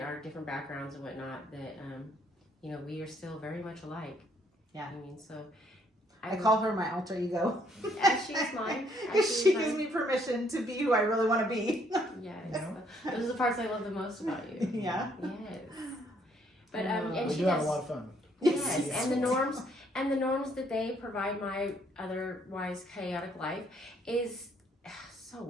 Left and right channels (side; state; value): both; normal; correlation 0.67